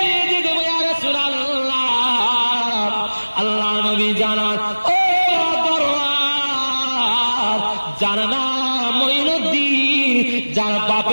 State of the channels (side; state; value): both; inverted; correlation -1.00